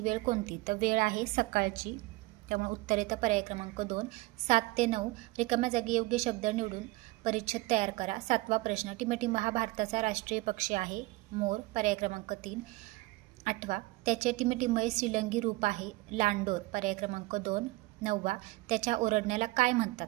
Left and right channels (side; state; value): left; quieter; 21.0 dB